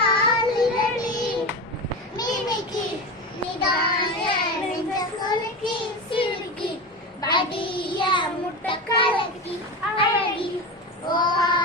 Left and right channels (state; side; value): normal; both; correlation 0.23